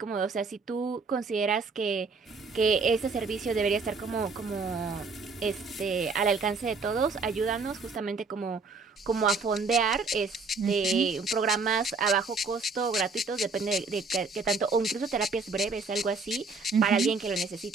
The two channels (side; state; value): left; quieter; 4.2 dB